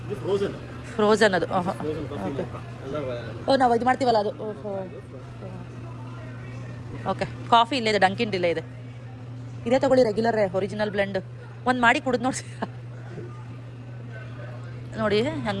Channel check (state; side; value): identical; both; correlation 1.00